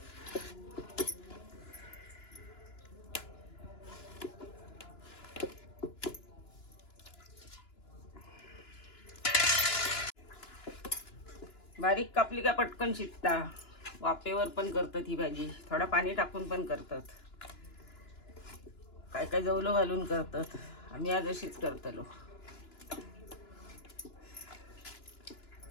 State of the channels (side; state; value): right; late; 2.9 ms